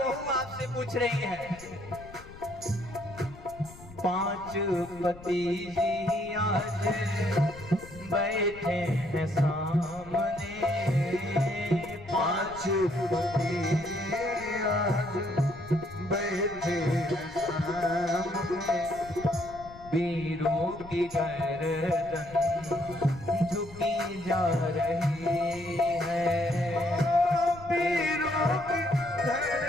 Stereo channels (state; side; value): noise; left; rumble, 18 dB below the sound